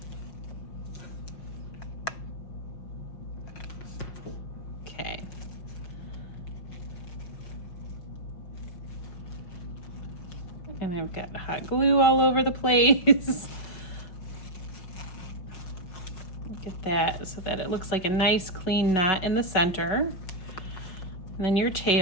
Okay. And I've got hot glue all over the place. Look at that, so that it looks like a nice clean knot in the center. And then your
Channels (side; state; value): right; late; 5.3 ms